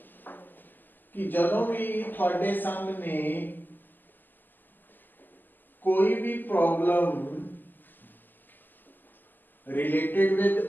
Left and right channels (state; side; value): late; right; 0.089 ms